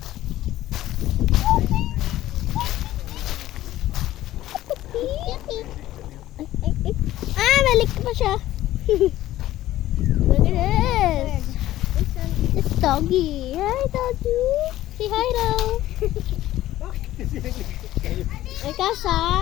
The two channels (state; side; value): quieter; right; 14.5 dB